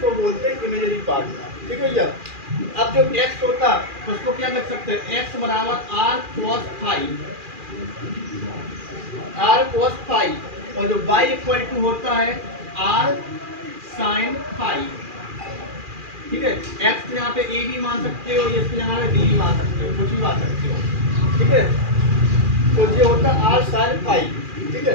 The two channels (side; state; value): left; late; 2.4 ms